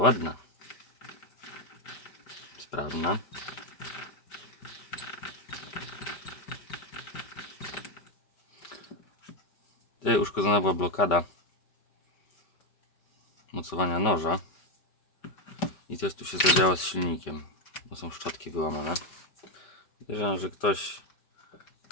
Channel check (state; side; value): late; right; 5.1 ms